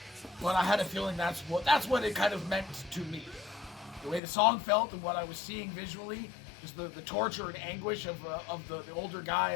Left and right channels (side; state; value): right; drops out; at 4.2 s